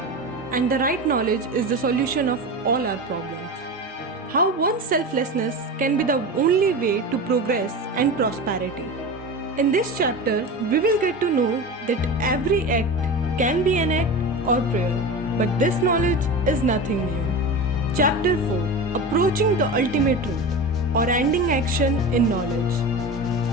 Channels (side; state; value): both; normal; correlation 0.27